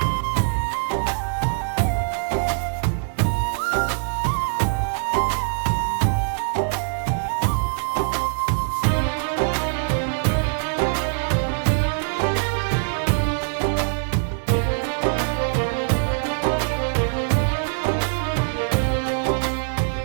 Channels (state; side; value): silent; left; digital silence